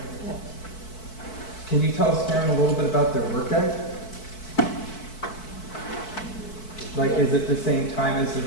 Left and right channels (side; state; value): right; late; 4.6 ms